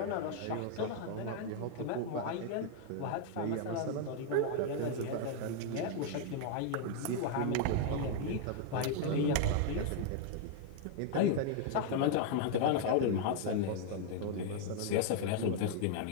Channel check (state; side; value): different; both; correlation 0.00